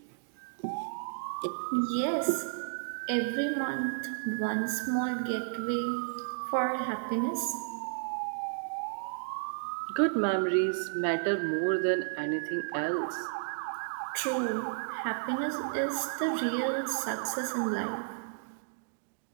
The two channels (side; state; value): left; silent; digital silence